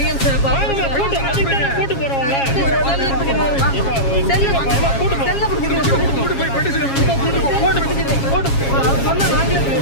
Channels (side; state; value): right; late; 7.3 ms